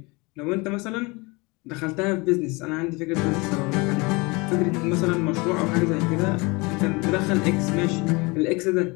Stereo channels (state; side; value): quieter; right; 26.4 dB